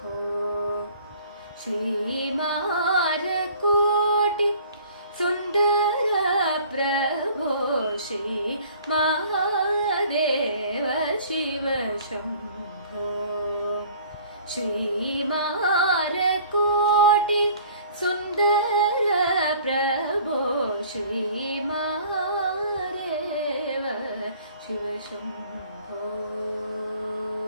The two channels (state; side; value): inverted; both; correlation -0.51